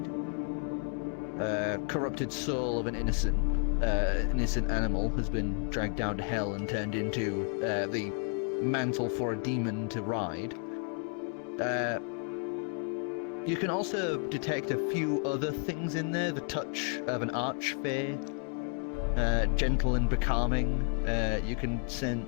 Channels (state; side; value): quieter; right; 38.8 dB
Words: Corrupted soul of an innocent animal has been dragged down to hell and turned into the mantle for a demon to ride. You can also detect a few other things in there. The touch of an archfey, gentle and becalming. You can